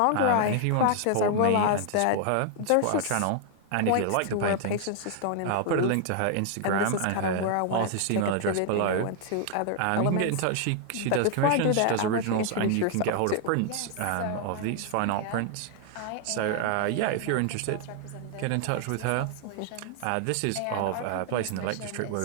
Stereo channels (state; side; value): different; both; correlation 0.00